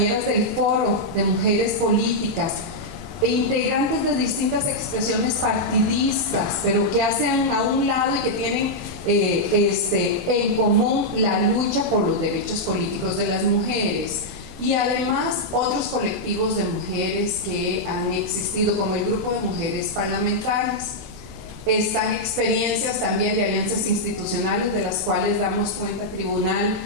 del foro de mujeres políticas e integrantes de distintas expresiones partidistas, pero que hacen a un lado y que tienen en común la lucha por los derechos políticos de las mujeres. Y además otros colectivos de mujeres que han existido, como el grupo de mujeres parlamentarias. Están experiencias también de alianzas institucionales de las cuales damos cuenta Tribunal,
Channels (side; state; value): both; normal; correlation -0.05